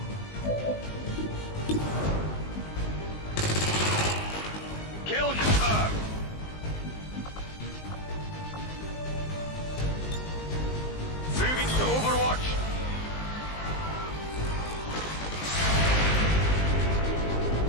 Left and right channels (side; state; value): right; late; 19 ms